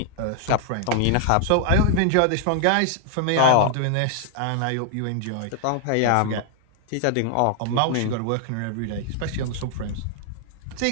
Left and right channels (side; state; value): both; different; correlation 0.00